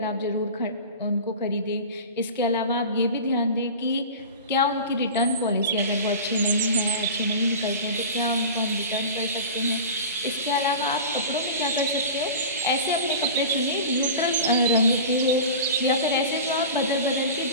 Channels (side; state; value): both; inverted; correlation -0.33